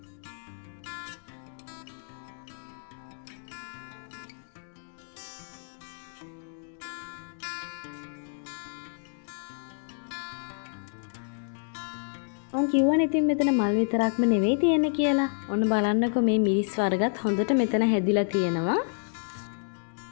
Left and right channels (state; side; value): silent; right; digital silence